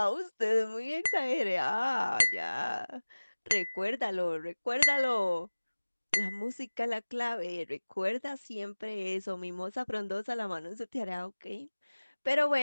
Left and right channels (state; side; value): inverted; both; correlation -1.00